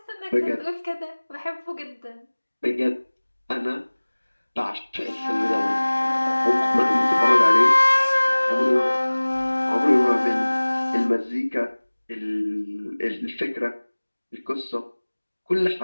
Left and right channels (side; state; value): both; inverted; correlation -1.00